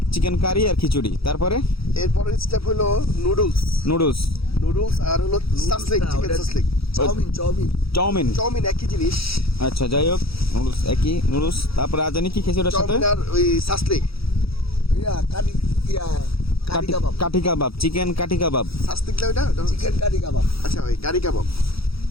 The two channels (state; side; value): late; right; 0.76 ms